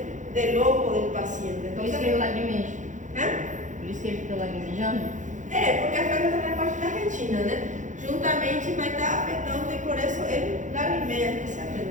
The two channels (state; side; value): late; left; 0.36 ms